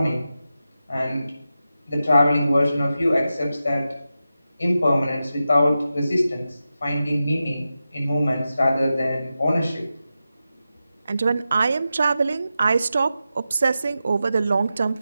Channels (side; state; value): both; inverted; correlation -0.91